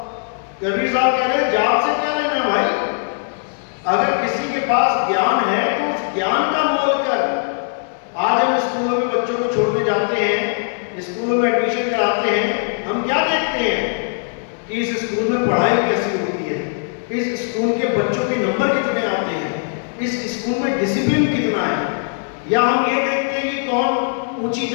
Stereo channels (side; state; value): right; silent; 64 dB below the other